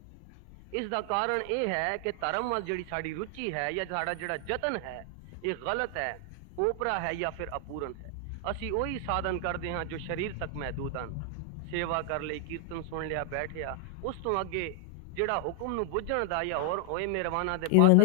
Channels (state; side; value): different; both; correlation 0.00